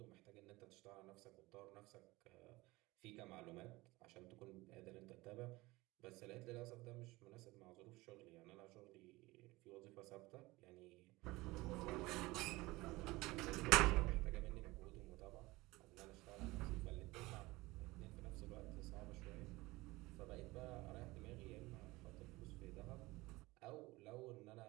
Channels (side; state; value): left; quieter; 20.9 dB